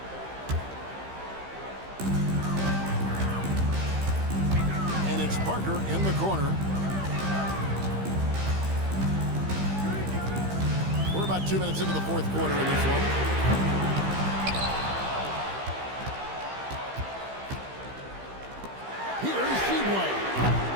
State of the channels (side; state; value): left; late; 15 ms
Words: And it's Parker in the corner. We're about 2 minutes into the fourth quarter in this one. Here's Sheedway.